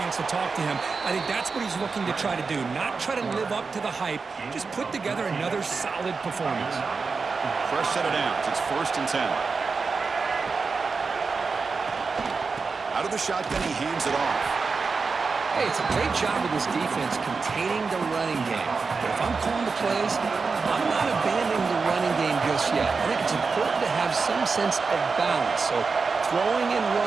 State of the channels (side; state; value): left; quieter; 4.7 dB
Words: to talk to him. I think that's what he's looking to try to do, not try to live up to the hype, just put together another solid performance. Fresh set of downs. It's 1st and 10. Out of the shotgun, he hands it off. Hey, it's a great job with this defense containing the running game. But if I'm calling the plays, I'm not abandoning the running game just yet. I think it's important to have some sense of balance. So throwing and